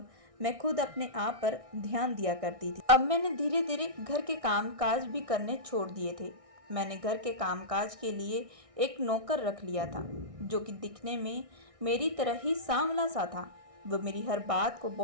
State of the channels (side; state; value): left; late; 1.6 ms